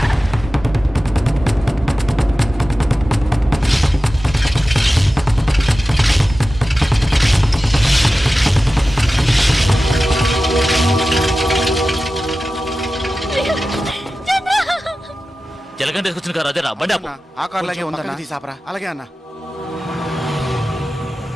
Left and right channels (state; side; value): normal; both; correlation 0.95